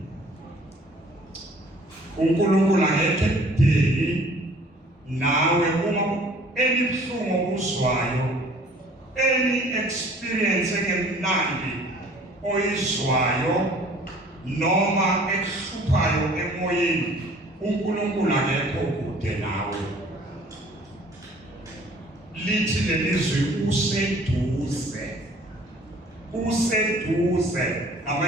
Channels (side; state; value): both; normal; correlation 0.53